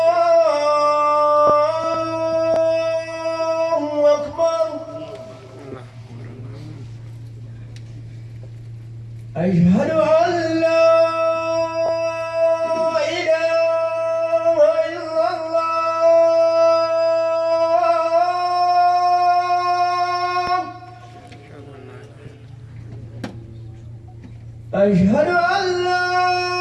الله أكبر أشهد أن لا أشهد أن لا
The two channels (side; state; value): both; identical; correlation 1.00